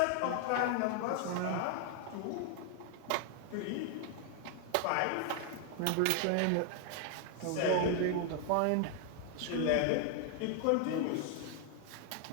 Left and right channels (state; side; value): different; both; correlation 0.00